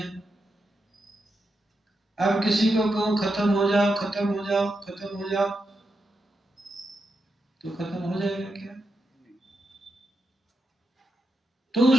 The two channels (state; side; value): normal; both; correlation 0.86